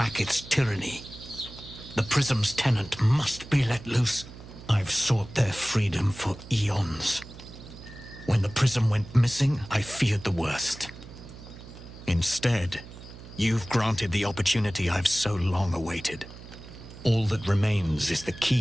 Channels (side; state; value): right; noise; hum, 16 dB below the sound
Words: tyranny. The Prism's tenant must be let loose. I've sought their freedom for eons. When the Prism went missing, I feared the worst. Instead, you've granted the opportunity I've so long awaited. All that remains is the